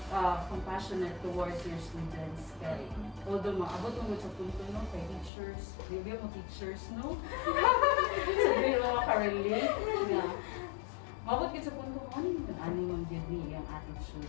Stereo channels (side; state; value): right; drops out; at 5.3 s